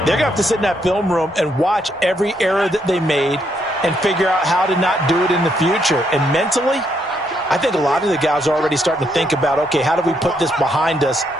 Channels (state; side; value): normal; both; correlation 0.75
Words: going to have to sit in that film room and watch every error that they made and figure out how to not do it in the future. And mentally, I think a lot of the guys are already starting to think about, okay, how do we put this behind us